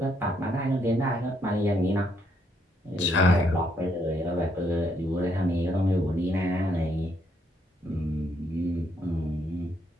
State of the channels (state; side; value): normal; both; correlation 0.73